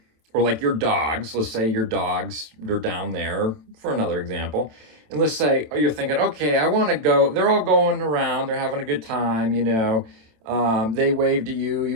or like your dogs, let's say your dogs, they're down there for another example. And let's say, you're thinking, okay, I want to go, they're all going around, they're having a good time, they wave to you,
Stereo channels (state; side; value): late; left; 27 ms